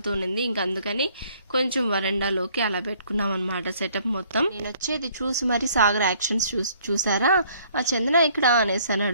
ఇంకా అందుకని కొంచెం వరండాలోకి అలా పెట్టుకున్నాం అనమాట సెటప్ మొత్తం. నేను వచ్చేది చూసి మరి సాగర్ యాక్షన్స్ చూసారా, ఆ చందన ఇక్కడ అనేసి అని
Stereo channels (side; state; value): both; inverted; correlation -0.61